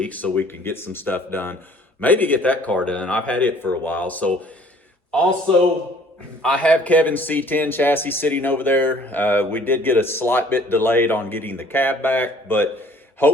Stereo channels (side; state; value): both; normal; correlation 0.55